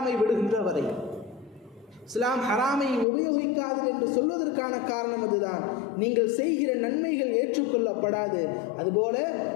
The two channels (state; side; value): drops out; right; at 3.1 s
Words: விடுகின்ற வரை. இஸ்லாம் ஹராமை உபயோகிக்காது என்று சொல்வதற்கான காரணம் அதுதான். நீங்கள் செய்கிற நன்மைகள் ஏற்றுக்கொள்ளப்படாது, அதுபோல